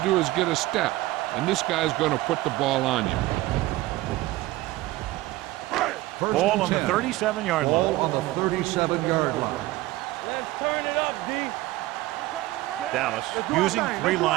do is get a step, and this guy's going to put the ball on you. Ball on the 37-yard line. Ball on the 37-yard line. Let's turn it up, D. We're coming around. Dallas using three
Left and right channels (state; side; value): quieter; left; 18.1 dB